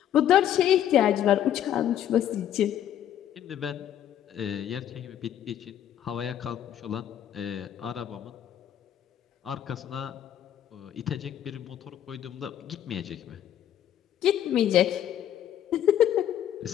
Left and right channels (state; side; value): quieter; right; 10.7 dB